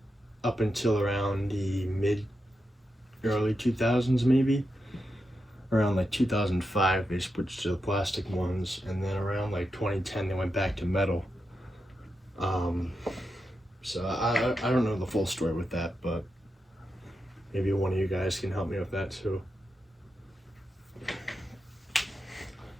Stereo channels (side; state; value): both; normal; correlation 0.87